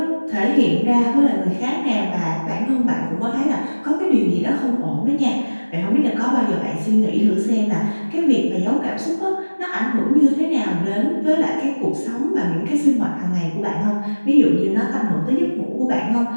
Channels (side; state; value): both; inverted; correlation -1.00